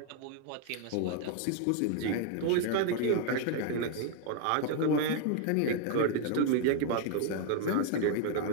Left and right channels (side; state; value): both; different; correlation 0.00